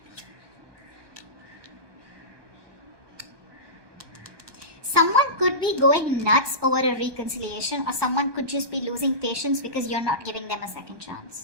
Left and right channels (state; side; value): late; left; 1.2 ms